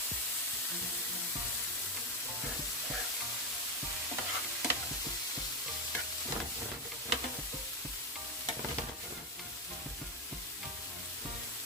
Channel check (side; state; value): both; normal; correlation 0.10